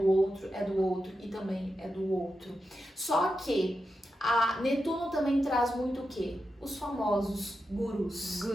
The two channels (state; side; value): normal; both; correlation 0.88